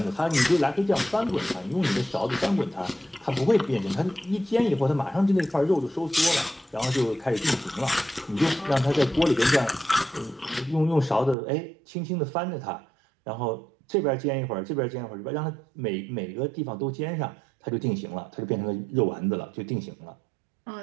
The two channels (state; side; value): drops out; left; at 11.4 s